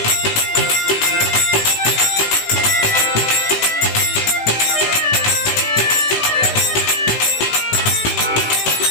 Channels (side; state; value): right; late; 18 ms